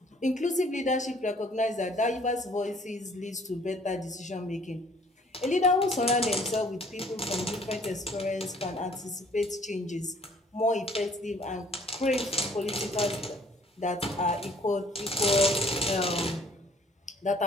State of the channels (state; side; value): normal; both; correlation 0.57